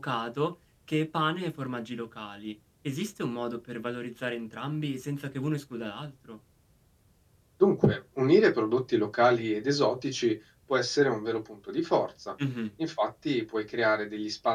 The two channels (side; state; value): both; identical; correlation 1.00